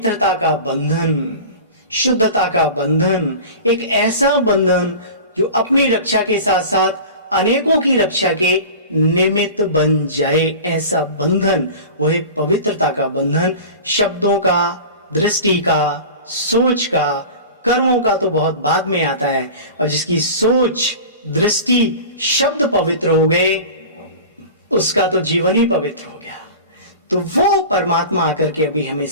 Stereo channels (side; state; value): both; inverted; correlation -0.35